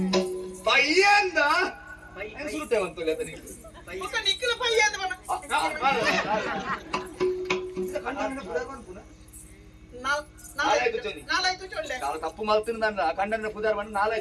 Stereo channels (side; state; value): both; identical; correlation 1.00